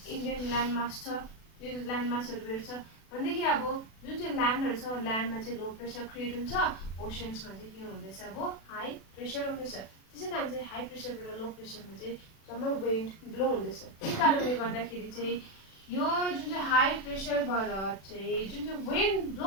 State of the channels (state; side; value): late; right; 36 ms